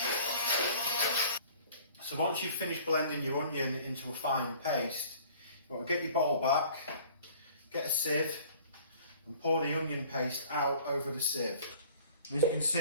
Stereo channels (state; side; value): inverted; both; correlation -0.51